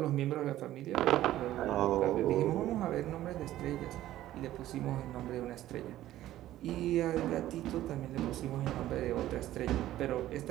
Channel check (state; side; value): quieter; left; 14.0 dB